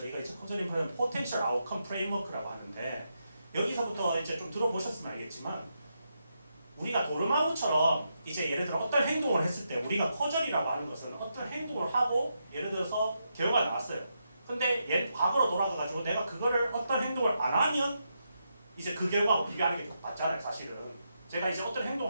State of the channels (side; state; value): both; inverted; correlation -0.83